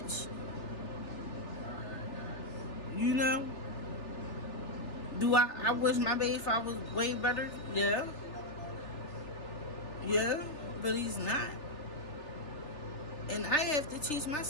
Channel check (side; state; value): right; late; 3.4 ms